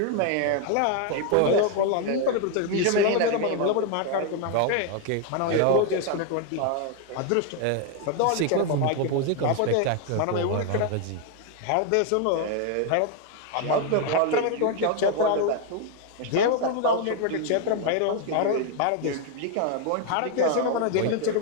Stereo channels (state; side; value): different; both; correlation 0.01